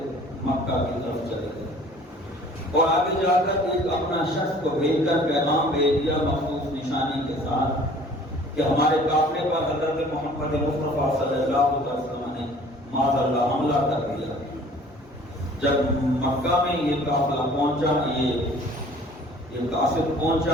مکہ کی طرف چلے گئے، اور آگے جا کر ایک اپنا شخص کو بھیج کر پیغام بھیج دیا مخصوص نشانی کے ساتھ کہ ہمارے قافلے پر حضرت محمد مصطفیٰ صلی اللہ علیہ وسلم نے معاذ اللہ حملہ کر دیا۔ جب مکہ میں یہ قافلہ پہنچا، یہ قاصد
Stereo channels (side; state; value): both; normal; correlation 0.51